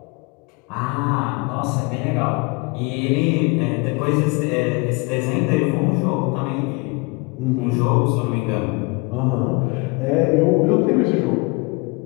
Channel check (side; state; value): right; quieter; 28.4 dB